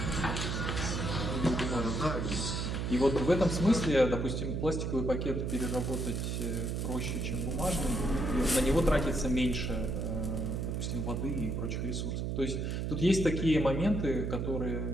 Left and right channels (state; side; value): noise; right; hum, 1 dB below the sound